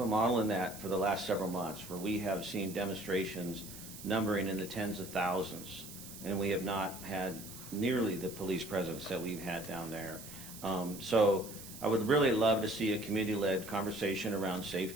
model in that for the last several months where we have seen demonstrations numbering in the tens of thousands, and we have not had nearly the police presence that we've had down there. So I would really love to see a community-led conversation around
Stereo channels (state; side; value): noise; right; hiss, 14 dB below the sound